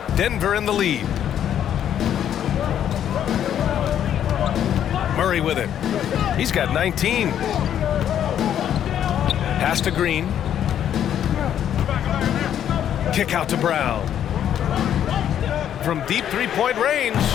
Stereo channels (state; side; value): quieter; right; 10.0 dB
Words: Denver in the lead. Murray with it. He's got 19. Pass to Green. Kick out to Brown. From deep three-point range.